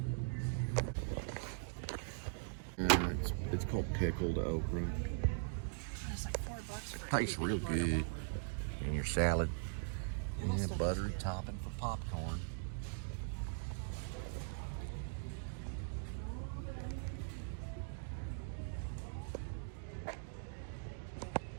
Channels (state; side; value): silent; left; digital silence